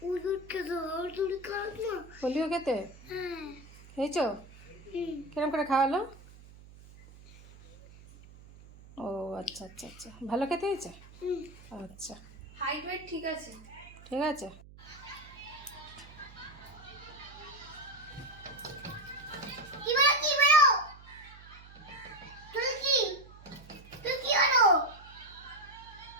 পোলিও খেতে খেয়েছ? কিরম করে খাওয়ালো? ও আচ্ছা আচ্ছা আচ্ছা, ভালো খেতে হয়েছে? আচ্ছা, হাইট ওয়েট ঠিক আছে? ঠিক আছে।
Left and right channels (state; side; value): noise; right; hum, 20 dB below the sound